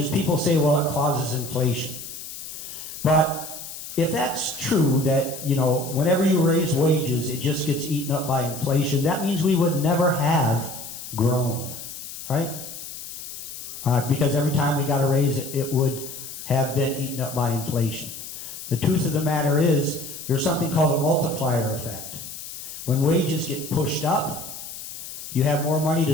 people say, well, it causes inflation. But if that's true, that, whenever you raise wages, it just gets eaten up by inflation, that means we would never have grown, right? Because every time we got a raise, it would have been eaten up by inflation. The truth of the matter is, there's something called a multiplier effect. When wages get pushed up, you have more money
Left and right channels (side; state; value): left; noise; hiss, 11 dB below the sound